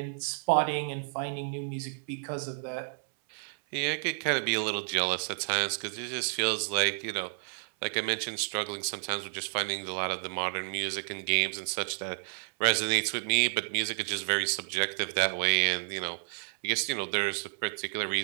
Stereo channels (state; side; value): silent; left; 57 dB below the other